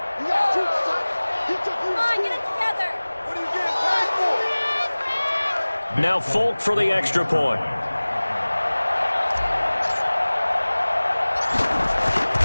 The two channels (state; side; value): inverted; both; correlation -1.00